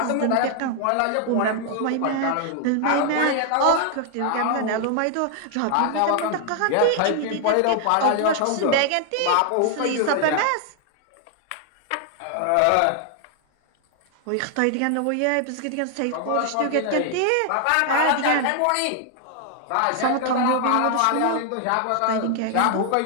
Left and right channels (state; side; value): different; both; correlation 0.00